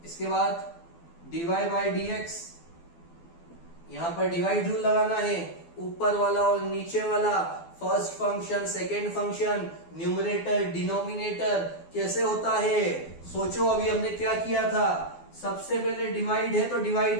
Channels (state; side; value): late; right; 12 ms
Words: इसके बाद dy बाई dx, यहां पर डिवाइड रूल लगाना है, ऊपर वाला और नीचे वाला, first function, second function, numerator, denominator, कैसे होता है? सोचो अभी हमने क्या किया था। सबसे पहले डिवाइड है तो